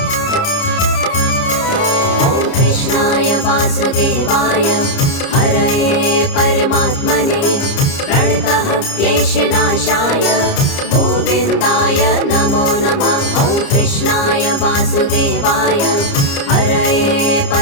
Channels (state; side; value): late; right; 30 ms